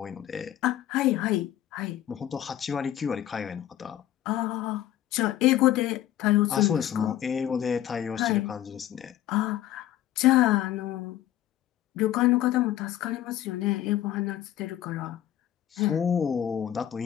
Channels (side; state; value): right; quieter; 12.3 dB